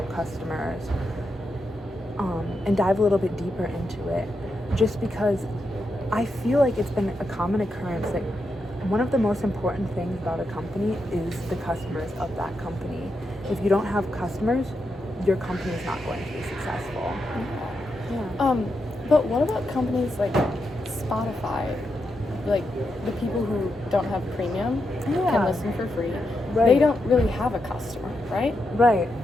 customers and dive a little bit deeper into it, just because I feel like it's been a common occurrence that one of the most important things about a company is the customers of that company. If you don't have customers, your company is not going to be successful. Yeah. But what about companies like Spotify? Like the people who don't have premium can listen for free. Right. They don't really have a customer, right? Right.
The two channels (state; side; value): normal; both; correlation 0.85